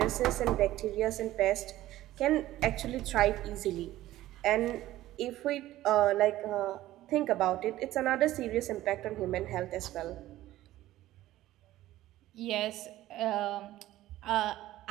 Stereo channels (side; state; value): left; quieter; 15.1 dB